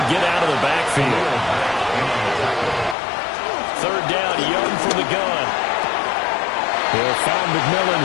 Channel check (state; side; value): drops out; right; at 3.0 s